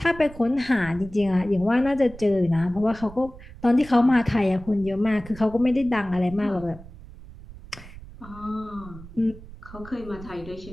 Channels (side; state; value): right; noise; rumble, 17 dB below the sound